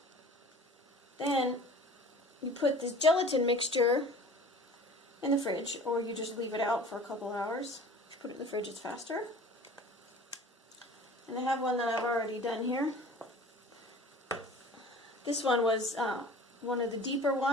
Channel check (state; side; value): normal; both; correlation 0.43